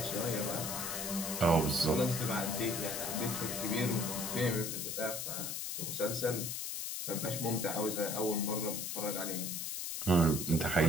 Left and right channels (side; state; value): left; noise; hiss, 3 dB below the sound